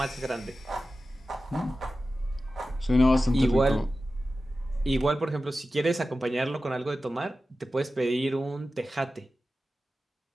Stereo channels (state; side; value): normal; both; correlation 0.94